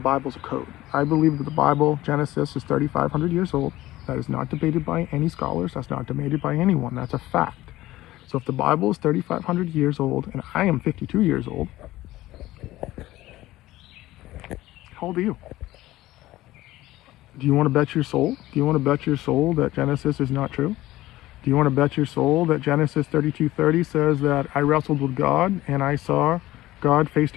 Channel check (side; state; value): right; quieter; 16.5 dB